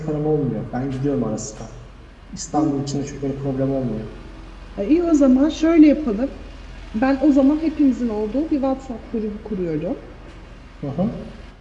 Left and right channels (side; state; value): both; identical; correlation 1.00